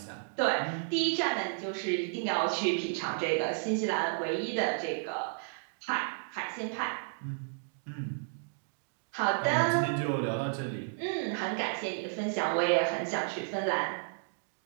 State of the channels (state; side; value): silent; left; digital silence